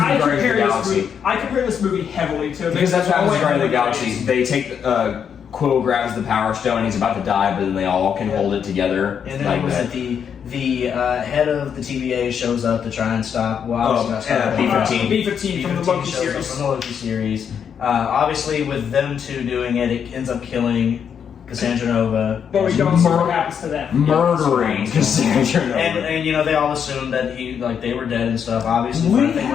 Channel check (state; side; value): quieter; right; 7.6 dB